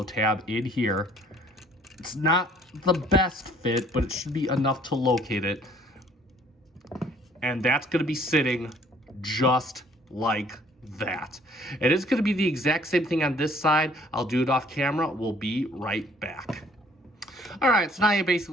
tab in here. It's not the best fit, but it should be enough to locate it. And that's going to be sitting just like that. It is going to be the exact same thing on this side. I'll do it off camera. We'll be right back. All right, so now you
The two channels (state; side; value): normal; both; correlation 0.58